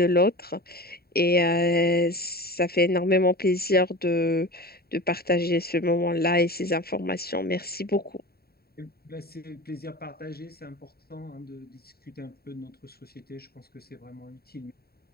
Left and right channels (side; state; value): right; late; 0.45 ms